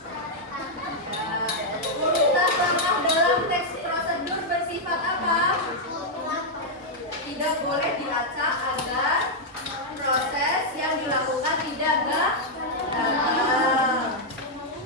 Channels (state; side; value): normal; both; correlation -0.03